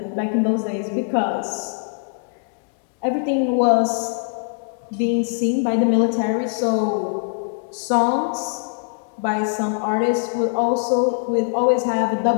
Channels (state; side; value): silent; right; 64 dB below the other